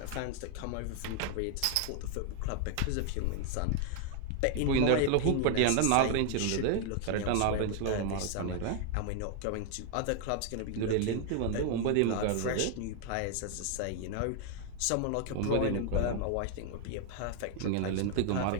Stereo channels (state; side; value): different; both; correlation 0.00